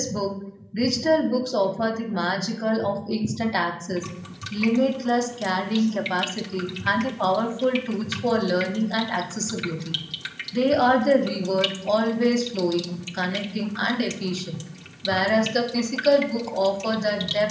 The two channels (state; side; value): identical; both; correlation 1.00